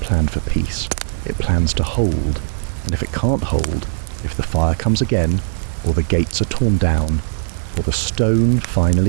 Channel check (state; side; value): silent; left; 61 dB below the other